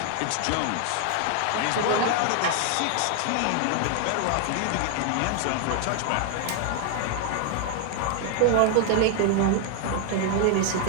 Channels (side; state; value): both; different; correlation 0.00